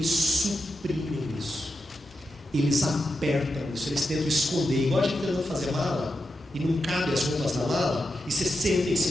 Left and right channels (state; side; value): normal; both; correlation 0.87